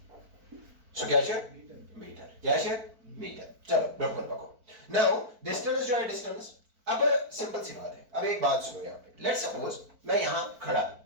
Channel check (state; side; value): late; left; 4.5 ms